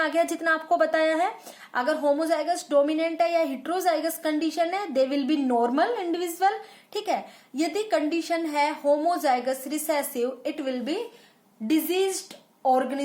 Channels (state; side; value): identical; both; correlation 1.00